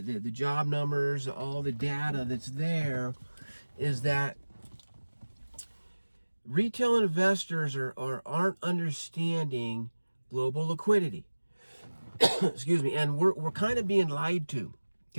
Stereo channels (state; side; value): inverted; both; correlation -1.00